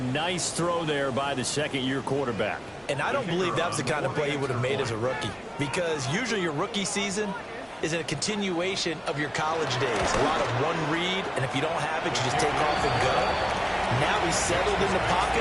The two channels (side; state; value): both; identical; correlation 1.00